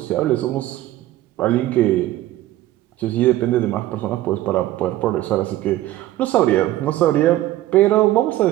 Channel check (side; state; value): left; quieter; 15.2 dB